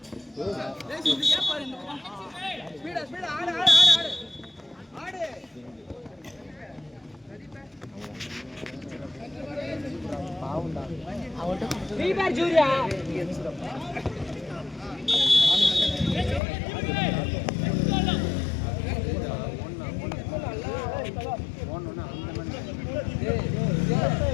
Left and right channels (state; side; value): drops out; right; at 16.4 s